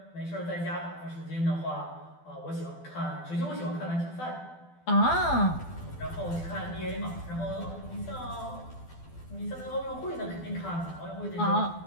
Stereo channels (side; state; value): right; late; 12 ms